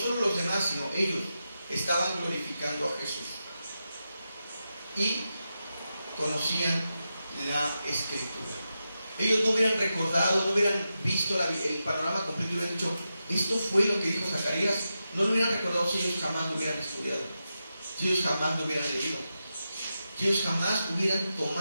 los demás, sino ellos estaban glorificando a Jesús. Y conocían la Escritura. Ellos no hubieran recordado, no hubieran visto el panorama completo y hubieran dicho, esto fue lo que dijo Zacarías. No lo hubieran recordado si ellos jamás lo hubieran estudiado, si ellos jamás lo hubieran leído, si ellos jamás hubieran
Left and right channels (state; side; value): inverted; both; correlation -0.89